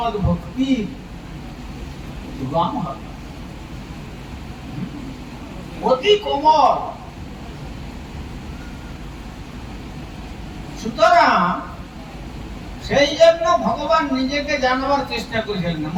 ভক্তি উদ্গম হবে, অতি কোমল। সুতরাং সেই জন্য ভগবান নিজেকে জানাবার চেষ্টা করেছিলেন,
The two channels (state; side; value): identical; both; correlation 1.00